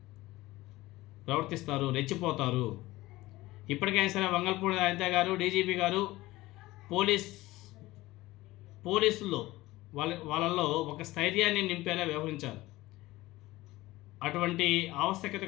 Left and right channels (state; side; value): quieter; right; 18.5 dB